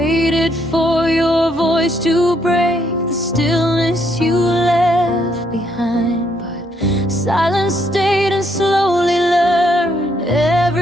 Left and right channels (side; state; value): both; normal; correlation 0.72